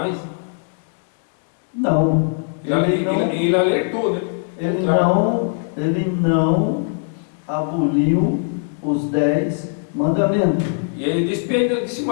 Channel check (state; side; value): silent; right; digital silence